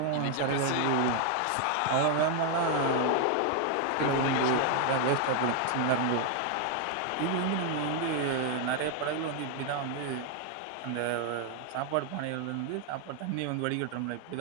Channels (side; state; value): both; different; correlation 0.00